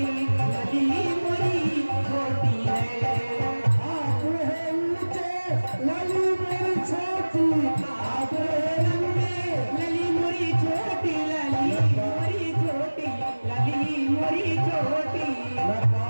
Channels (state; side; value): inverted; both; correlation -1.00